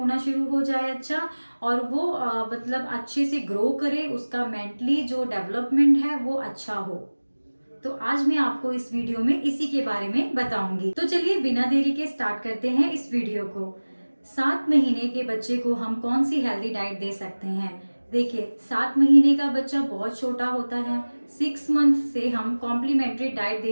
शुरू हो जाए अच्छा, और वो मतलब अच्छे से ग्रो करे, उसका मेंटली जो डेवलपमेंट है वो अच्छा हो। तो आज मैं आपको इस वीडियो में इसी के बारे में बताऊंगी। तो चलिए बिना देरी के स्टार्ट करते हैं इस वीडियो को। 7 महीने के बच्चे को हम कौन सी हेल्दी डाइट दे सकते हैं। देखिए, 7 महीने का बच्चा बहुत छोटा होता है। 6 मंथ से हम कॉम्प्लीमेंट्री डाइट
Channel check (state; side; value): inverted; both; correlation -1.00